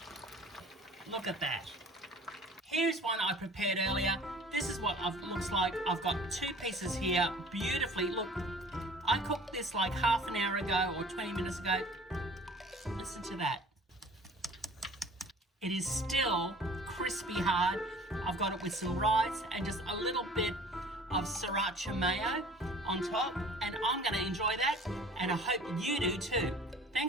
Look at that. Here's one I prepared earlier. this is what it looks like. I've got 2 pieces here, beautifully. Look, I cooked this like half an hour ago or 20 minutes ago. Listen to that. It is still crispy hard. I've got it with some rice and just a little bit of sriracha mayo on top, and I'm gonna enjoy that, and I hope you do too.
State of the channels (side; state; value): both; normal; correlation 0.48